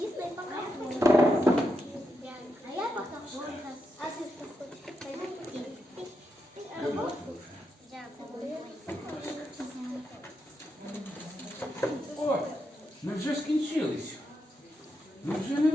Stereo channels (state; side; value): normal; both; correlation 0.84